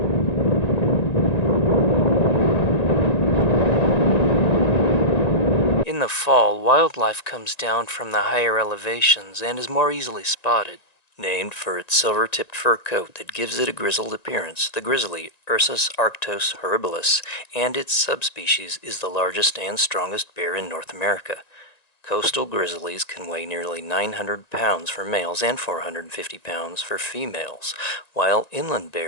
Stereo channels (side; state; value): right; late; 1.9 ms